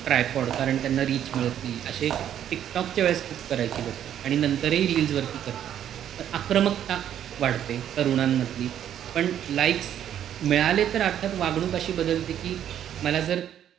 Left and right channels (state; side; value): quieter; left; 10.3 dB